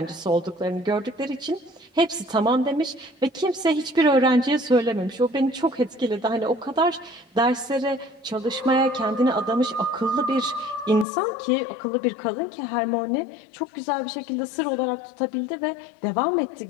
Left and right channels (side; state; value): right; drops out; at 11.1 s